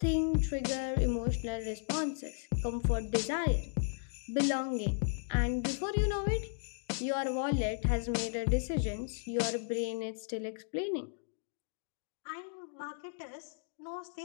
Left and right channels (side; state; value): right; silent; digital silence